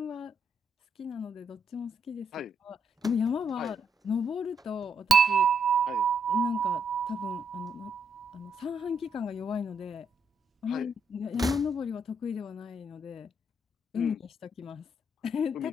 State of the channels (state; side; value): normal; both; correlation 0.76